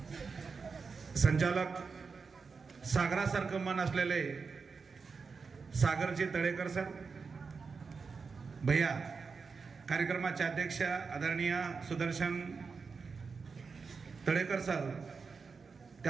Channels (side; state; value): left; quieter; 5.0 dB